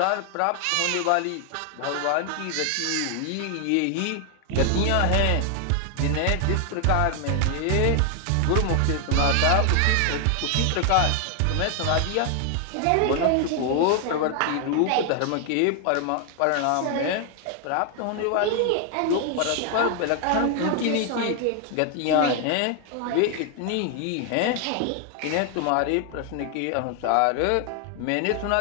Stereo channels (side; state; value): both; different; correlation 0.00